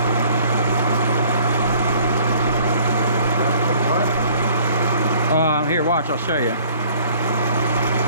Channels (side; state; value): both; inverted; correlation -0.53